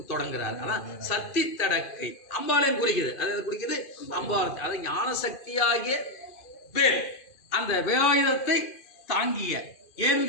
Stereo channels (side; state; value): right; late; 2.5 ms